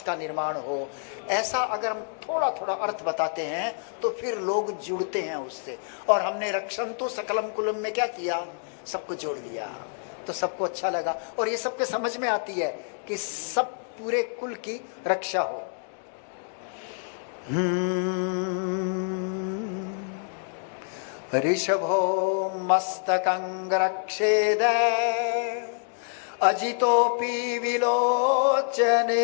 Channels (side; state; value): right; silent; digital silence